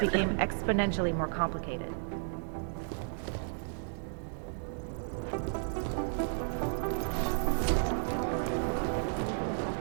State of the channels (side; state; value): left; silent; digital silence